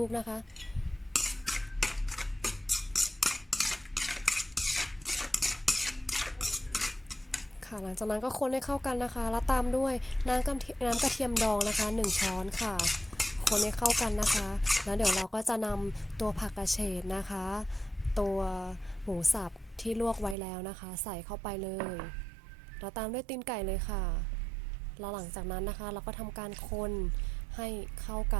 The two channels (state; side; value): drops out; left; at 20.4 s